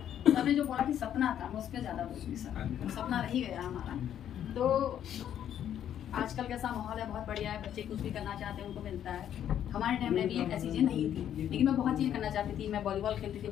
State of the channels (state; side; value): quieter; right; 10.2 dB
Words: सबने जो बोला कि सपना था, मैं उस पर ज़्यादा बोलूँगी, सपना रह ही गया हमारा। तो आजकल कैसा माहौल है, बहुत बढ़िया है, बच्चे कुछ भी करना चाहते हैं उनको मिलता है। हमारे टाइम में भी ऐसी चीज़ें नहीं थी, लेकिन मैं बहुत चीज़ें करना चाहती थी। मैं वॉलीबॉल खेलती थी